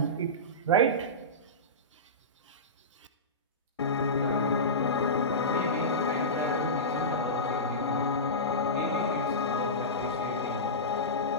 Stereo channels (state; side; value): normal; both; correlation -0.18